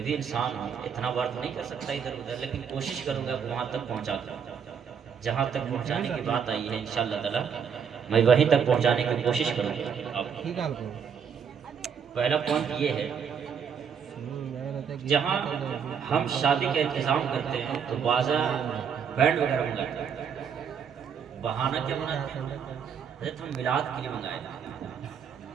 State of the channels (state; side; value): quieter; left; 7.1 dB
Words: بھی انسان ہوں، اتنا بار تو نہیں کر سکتا ادھر ادھر، لیکن کوشش کروں گا وہاں تک پہنچا دوں جہاں تک پہنچانے کی بات آئی ہے. انشاءاللہ تعالی میں وہیں تک پہنچانے کی کوشش کروں گا. پہلا پوائنٹ یہ ہے، جہاں ہم شادی کا انتظام کرتے ہیں تو بازار بینڈ وغیرہ منگاتے ہیں. بہانہ کیا بناتے ہیں؟ حضرت ہم میلاد کے لیے منگائے تھے،